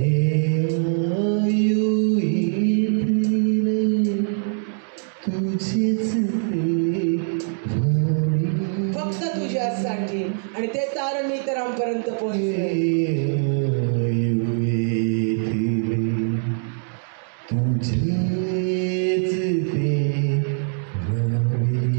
फक्त तुझ्यासाठी आणि ते तारण मी इतरांपर्यंत पोहोचले.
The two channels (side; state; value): left; silent; digital silence